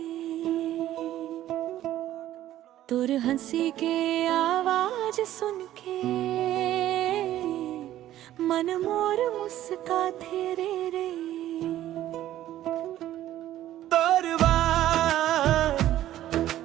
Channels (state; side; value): quieter; left; 13.2 dB